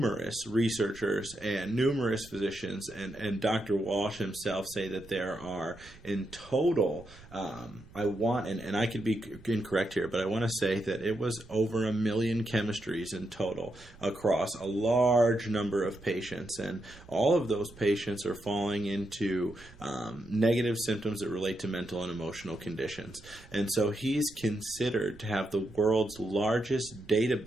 researchers and numerous physicians and Dr. Walsh himself say that there are, in total, and I could be incorrect here, but I want to say that it was over 1 million chemistries in total across a large number of patients, and all of those patients are falling into negative symptoms that relate to mental and emotional conditions. And so he's considered to have the world's largest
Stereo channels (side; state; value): right; noise; rumble, 21 dB below the sound